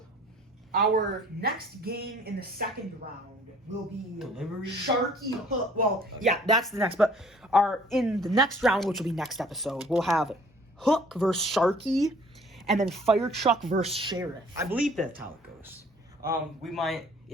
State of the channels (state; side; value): normal; both; correlation 0.54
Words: our next game in the second round will be Delivery? Sharky Hook. Well, yeah, that's the next. But in the next round, which will be next episode, we'll have Hook versus Sharky, and then Fire Truck versus Sheriff. I believe that's how it goes.